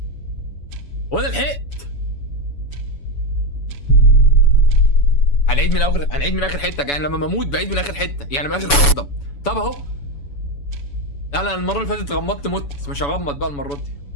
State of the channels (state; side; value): late; right; 7.0 ms